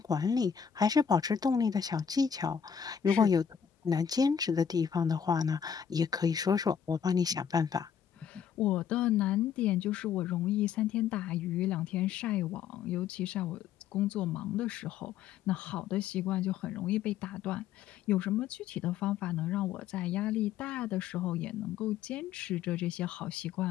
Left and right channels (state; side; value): quieter; right; 7.9 dB